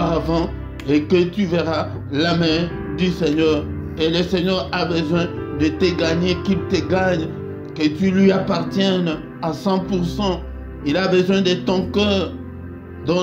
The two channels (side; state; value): both; identical; correlation 1.00